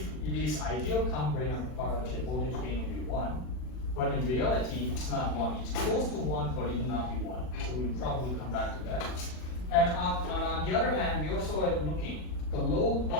it is ideal common drain amplifier, the voltage gain will be 1. But in reality, it's not 1. It's close to 1, but it will not be 1. So we'll probably come back to that. And on the other hand, we also are looking. The load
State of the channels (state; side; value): late; right; 40 ms